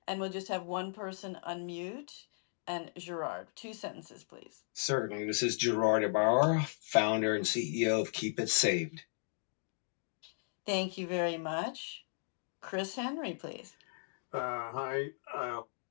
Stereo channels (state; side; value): silent; right; digital silence